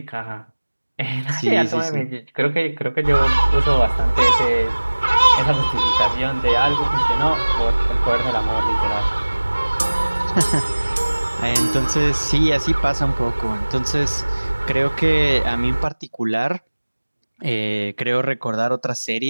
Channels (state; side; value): inverted; both; correlation -1.00